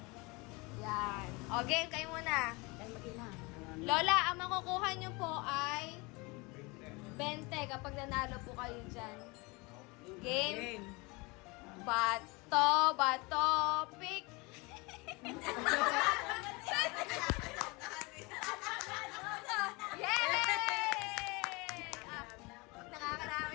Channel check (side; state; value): right; quieter; 26.3 dB